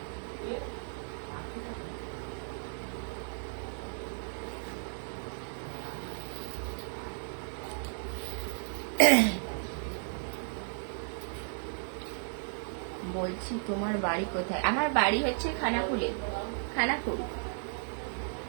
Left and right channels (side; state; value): left; silent; digital silence